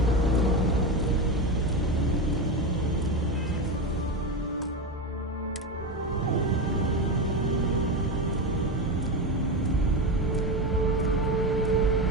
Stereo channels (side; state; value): both; normal; correlation 0.17